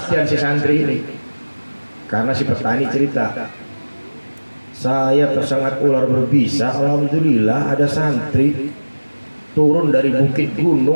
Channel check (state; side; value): inverted; both; correlation -1.00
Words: si santri ini. Karena si petani cerita, saya tersengat ular berbisa, alhamdulillah ada santri turun dari bukit